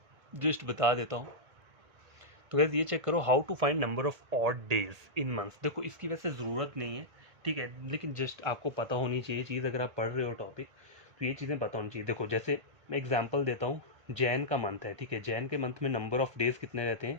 जस्ट बता देता हूँ। तो गाइस ये चेक करो, how to find number of odd days in months. देखो इसकी वैसे ज़रूरत नहीं है, ठीक है, लेकिन जस्ट आपको पता होनी चाहिए चीज़, अगर आप पढ़ रहे हो टॉपिक तो ये चीज़ें पता होनी चाहिए। देखो जैसे मैं एग्जांपल देता हूँ, जैन का मंथ है, ठीक है, जैन के मंथ में नंबर ऑफ डेज़ कितने रहते हैं,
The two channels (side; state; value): left; late; 1.8 ms